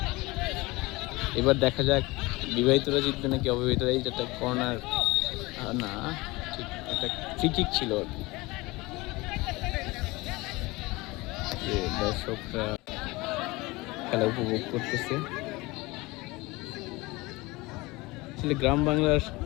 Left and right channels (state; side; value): quieter; right; 22.4 dB